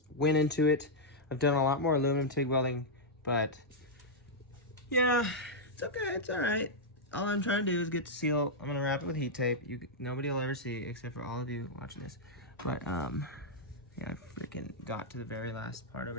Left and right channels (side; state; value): both; normal; correlation -0.05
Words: went into it. I've done a lot more aluminum TIG welding, but yeah, it's okay, it's all right. All I'm trying to do is get to seal. I'm gonna wrap it with heat tape. Nobody will ever see it except for all of you watching this. But yeah, I freaking got to the very last part